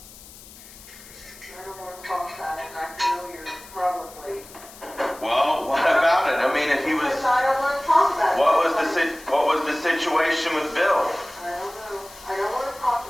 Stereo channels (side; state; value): left; noise; hiss, 19 dB below the sound